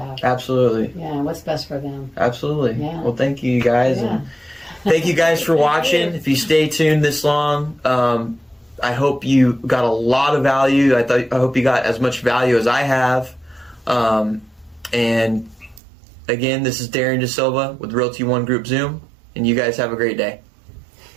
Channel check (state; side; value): drops out; left; at 15.8 s